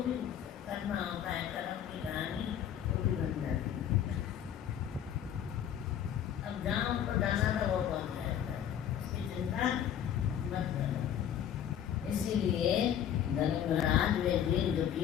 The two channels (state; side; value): quieter; right; 9.7 dB